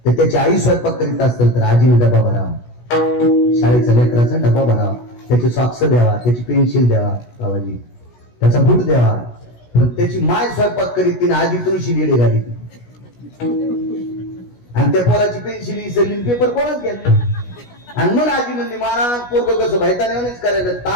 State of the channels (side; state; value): right; late; 16 ms